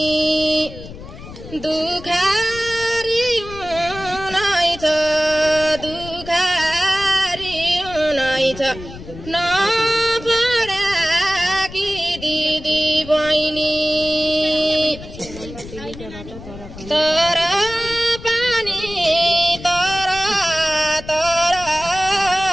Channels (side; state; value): left; noise; rumble, 14 dB below the sound